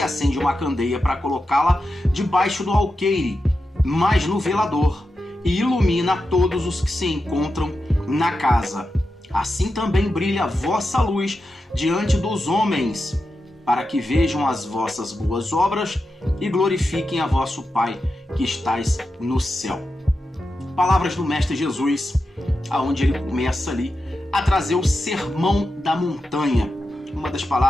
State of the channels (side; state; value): both; normal; correlation 0.90